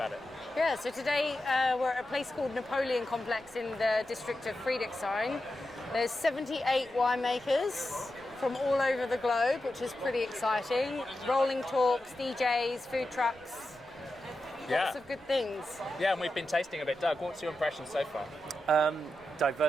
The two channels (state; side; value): noise; right; rumble, 28 dB below the sound